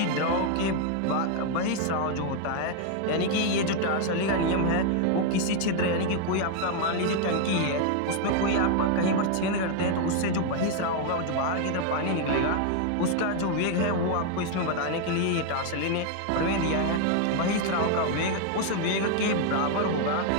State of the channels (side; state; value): both; different; correlation 0.00